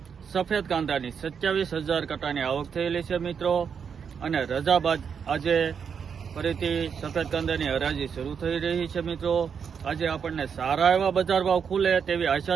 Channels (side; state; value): left; quieter; 6.8 dB